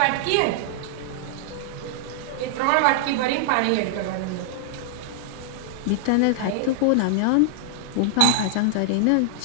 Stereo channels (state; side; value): different; both; correlation -0.01